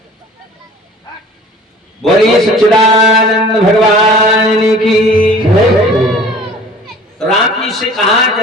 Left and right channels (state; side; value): normal; both; correlation 0.47